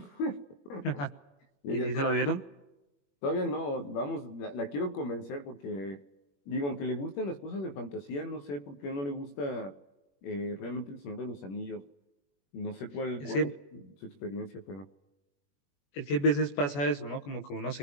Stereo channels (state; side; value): late; right; 21 ms